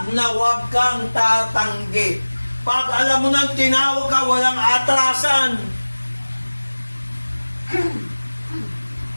na wag kang tatanggi. Pag alam mo nang tinawag ka, walang atrasan.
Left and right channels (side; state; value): both; inverted; correlation -1.00